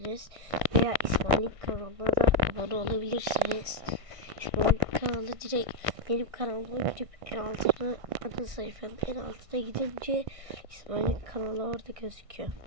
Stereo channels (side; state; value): left; late; 1.6 ms